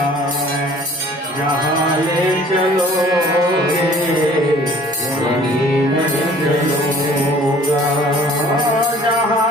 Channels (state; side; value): normal; both; correlation 0.52